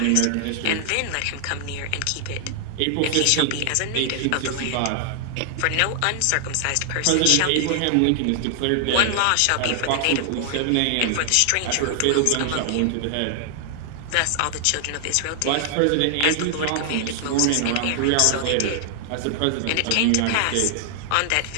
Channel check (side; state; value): both; different; correlation 0.00